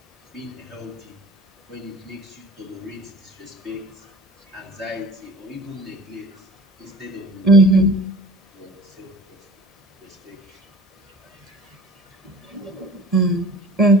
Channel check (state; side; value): normal; both; correlation 0.43